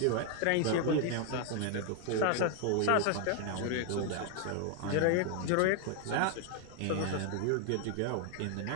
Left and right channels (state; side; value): different; both; correlation 0.00